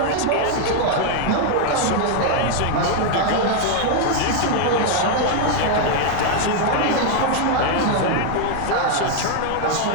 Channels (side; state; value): both; different; correlation 0.00